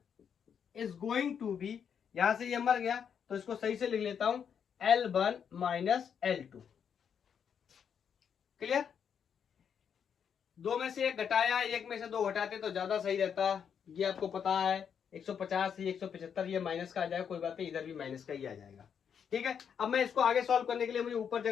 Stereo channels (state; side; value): quieter; right; 7.6 dB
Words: is going to be, यहां से ये मर गया तो इसको सही से लिख लेता हूं, L1 माइनस L2। क्लियर? दो में से एक घटाया, एक में से दो घटाते तो ज्यादा सही रहता, ये आपको पता है। 150 ही 175 ये माइनस का आ जाएगा, कोई बात नहीं, इधर भी माइनस का ही आ जाएगा। ठीक है, अब मैं इसको आगे सॉल्व करने के लिए मुझे ऊपर